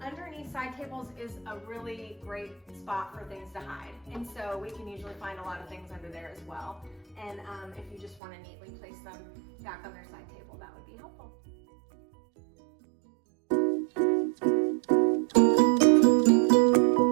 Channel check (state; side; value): drops out; left; at 8.2 s